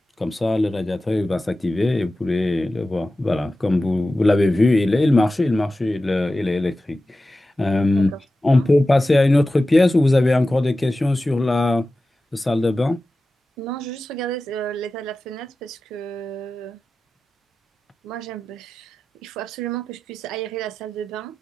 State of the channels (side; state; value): both; normal; correlation 0.94